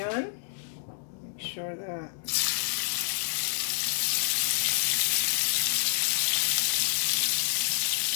Make sure that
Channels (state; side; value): silent; right; digital silence